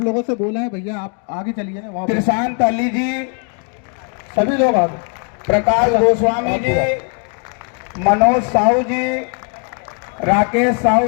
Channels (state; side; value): quieter; right; 39.4 dB